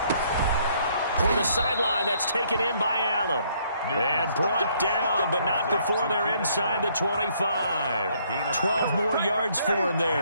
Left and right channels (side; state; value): both; inverted; correlation -0.67